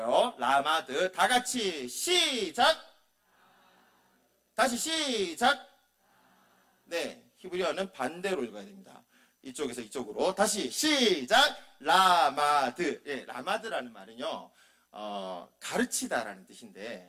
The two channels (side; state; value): both; identical; correlation 1.00